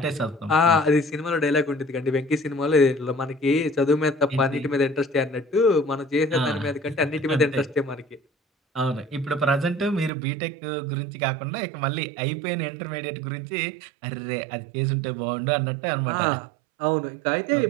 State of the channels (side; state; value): left; drops out; at 10.1 s